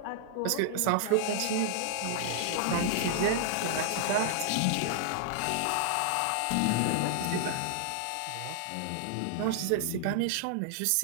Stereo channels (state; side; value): different; both; correlation -0.01